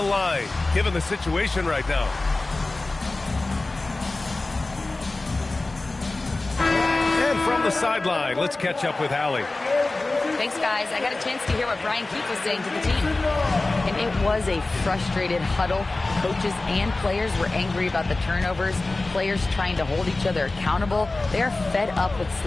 given the situation right now. And from the sideline, let's catch up with Allie. Thanks, guys. I got a chance to hear what Brian Keefe was saying to the team. And it was a frustrated huddle. Coaches and players were angry about the turnovers. Players trying to hold each other accountable. They're fed up with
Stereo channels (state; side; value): quieter; right; 3.1 dB